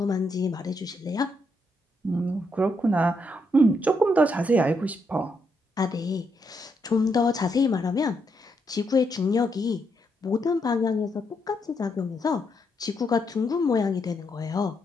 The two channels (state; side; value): normal; both; correlation 0.78